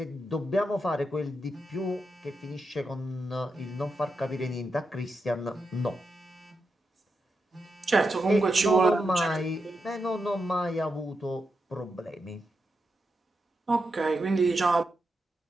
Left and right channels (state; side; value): normal; both; correlation 0.86